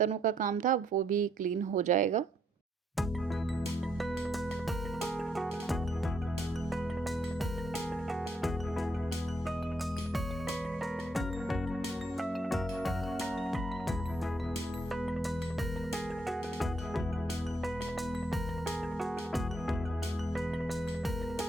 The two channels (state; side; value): normal; both; correlation 0.73